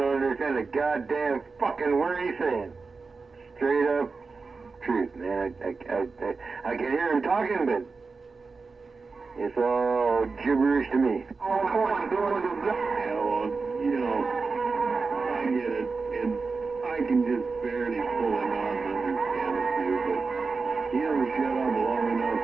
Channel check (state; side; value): quieter; left; 4.4 dB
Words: understand a goddamn fucking word he's saying. Straight up truth, man. I can hear him talking, but it's all gibberish to me. Yeah, well, I get it, and I can just barely pull him out and understand a few, but he don't shut up long enough